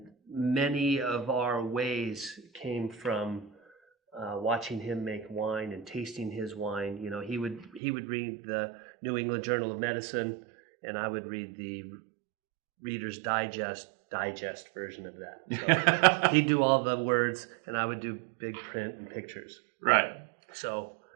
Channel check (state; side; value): drops out; left; at 7.8 s